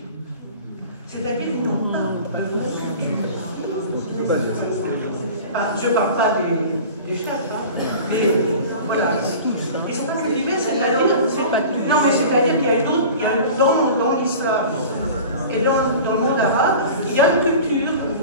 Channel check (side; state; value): both; inverted; correlation -0.39